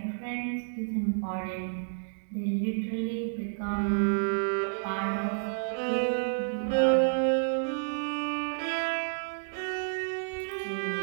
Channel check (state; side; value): silent; left; digital silence